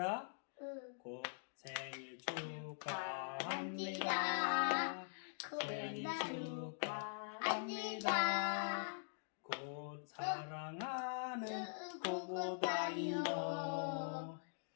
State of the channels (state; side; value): silent; right; digital silence